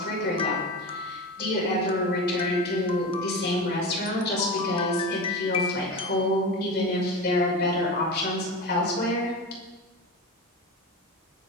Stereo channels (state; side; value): normal; both; correlation 0.25